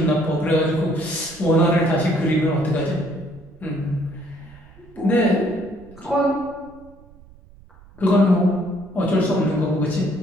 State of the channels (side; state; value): right; noise; rumble, 24 dB below the sound